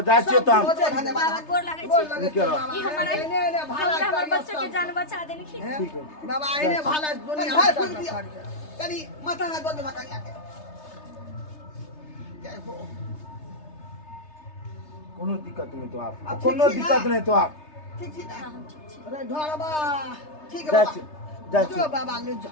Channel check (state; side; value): late; right; 3.3 ms